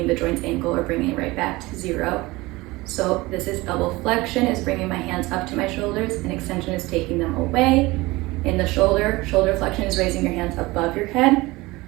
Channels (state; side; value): quieter; left; 21.2 dB